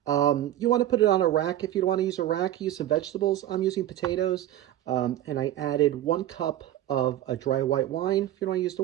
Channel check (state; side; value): quieter; left; 13.1 dB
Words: You want to put it on a rack. If you don't want to use a rack, use some vegetables. I'm using potatoes, and I added 1 cup of a dry white wine. If you don't want to use the